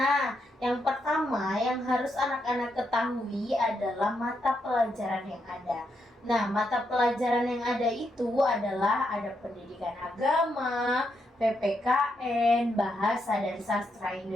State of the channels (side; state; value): both; normal; correlation 0.80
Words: yang pertama yang harus anak-anak ketahui adalah mata pelajaran yang ada. Nah, mata pelajaran yang ada itu adalah ada pendidikan agama, PPKN, bahasa dan sastra